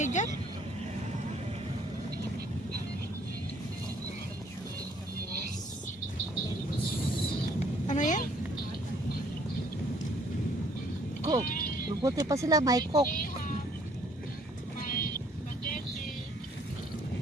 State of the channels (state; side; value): normal; both; correlation 0.62